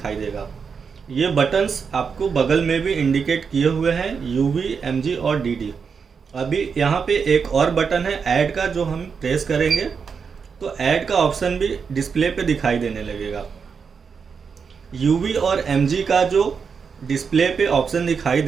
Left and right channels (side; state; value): left; quieter; 5.9 dB